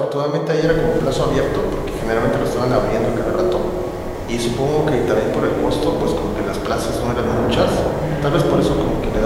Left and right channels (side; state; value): both; identical; correlation 1.00